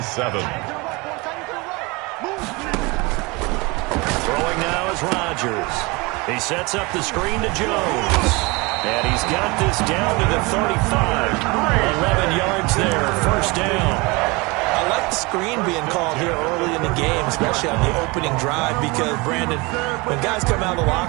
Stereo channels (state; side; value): quieter; left; 25.6 dB